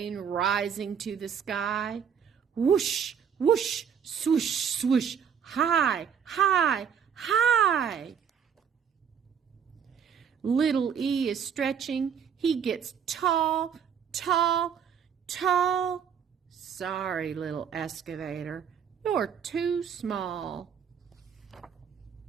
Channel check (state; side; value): quieter; left; 7.5 dB